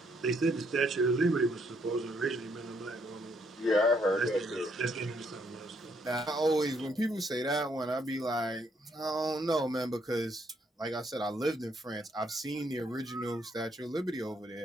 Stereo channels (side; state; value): both; normal; correlation 0.71